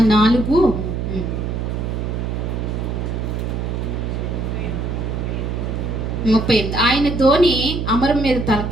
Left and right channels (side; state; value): right; noise; hum, 2 dB below the sound